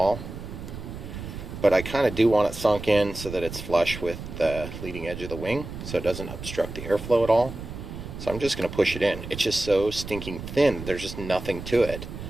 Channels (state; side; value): noise; right; rumble, 10 dB below the sound